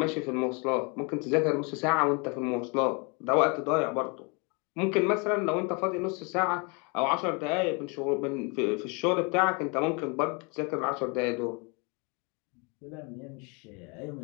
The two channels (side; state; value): right; quieter; 32.2 dB